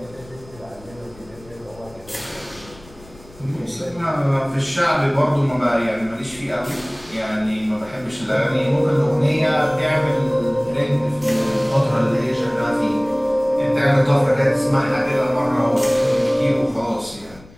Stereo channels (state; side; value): noise; left; rumble, 23 dB below the sound